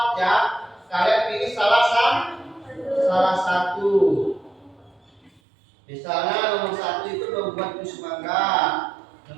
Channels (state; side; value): drops out; left; at 5.4 s